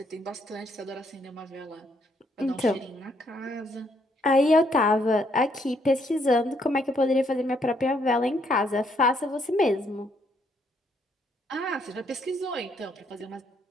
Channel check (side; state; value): both; normal; correlation 0.71